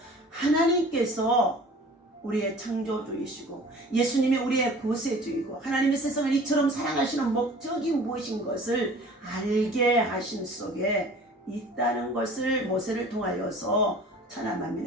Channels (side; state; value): both; normal; correlation 0.45